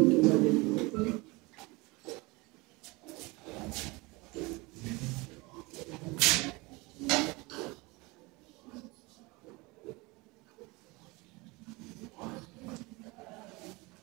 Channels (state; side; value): quieter; left; 24.6 dB